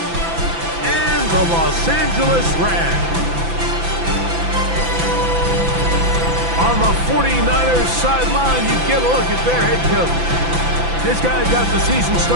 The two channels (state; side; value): late; left; 5.9 ms